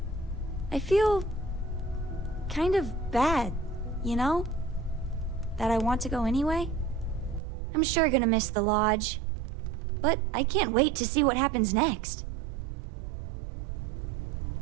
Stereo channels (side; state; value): left; drops out; at 7.4 s